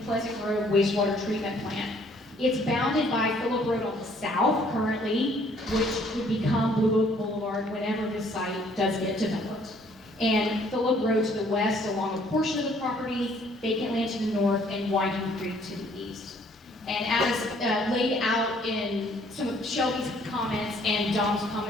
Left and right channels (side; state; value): both; normal; correlation 0.62